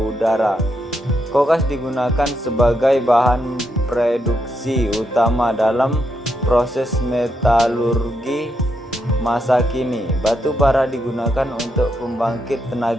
Kokas digunakan sebagai bahan produksi utama dalam proses metalurgi masa kini. Batu bara digunakan untuk pembangkit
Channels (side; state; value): both; normal; correlation 0.81